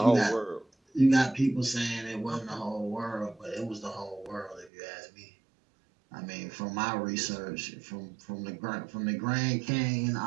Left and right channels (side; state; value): left; drops out; at 4.7 s